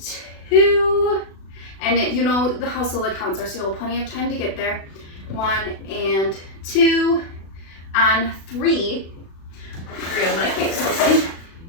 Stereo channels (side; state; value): right; late; 36 ms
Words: 2, and you know how slow the counts are, so you'll have plenty of time to get there. 1 and 2, on 3, I'm gonna kick something.